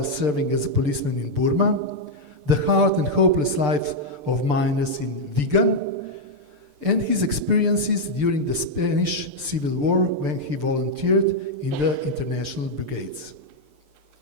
serving as a policeman in Burma, the hard and hopeless lives of miners in Vigan, and his experiences during the Spanish Civil War when he volunteered in the international brigades.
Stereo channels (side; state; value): left; late; 6.8 ms